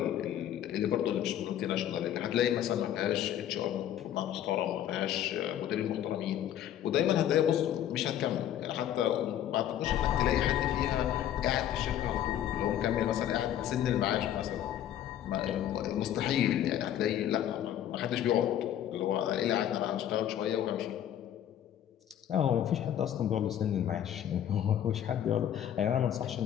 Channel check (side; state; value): right; quieter; 10.9 dB